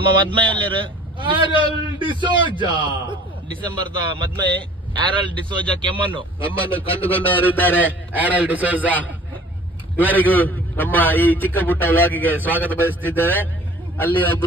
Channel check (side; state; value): both; normal; correlation 0.49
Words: madmay uller Aral D'Souza. December da madmay Aral D'Souza ಕೆಮ್ಮನ್ನು ಕಂಡುಕೊಂಡವರಿದ್ದಾರೆ. Aral D'Souza ಇವರಿಗೂ ನಮ್ಮ ಈ ಚಿಕ್ಕ ಪುಟ್ಟ ವ್ಲಾಗಿಗೆ ಸ್ವಾಗತ ಬಯಸುತ್ತಿದ್ದೇವೆ. ಅಲ್ಲಿ